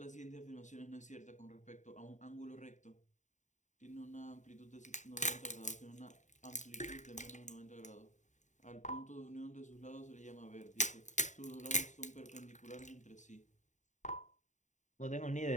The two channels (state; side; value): late; right; 0.35 ms